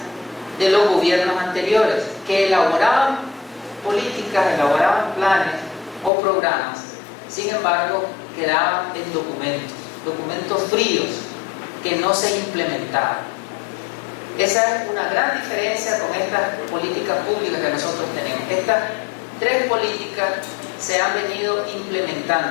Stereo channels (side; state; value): right; drops out; at 6.1 s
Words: de los gobiernos anteriores que elaboraban políticas, elaboraban planes o programas. Sin embargo, quedaban en documentos fríos que no se implementaban. Esa es una gran diferencia con estas políticas públicas que nosotros tenemos. Estas tres políticas se han venido